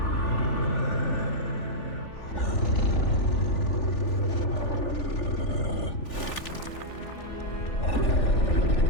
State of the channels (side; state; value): right; late; 3.4 ms